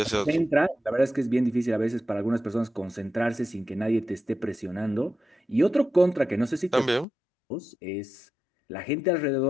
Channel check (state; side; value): drops out; right; at 7.1 s